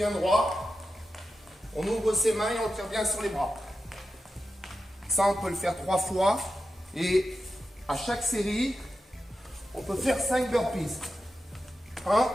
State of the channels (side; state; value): both; normal; correlation 0.91